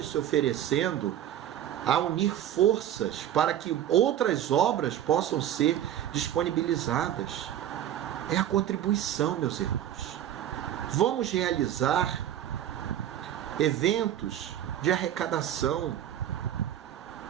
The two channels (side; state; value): left; quieter; 11.2 dB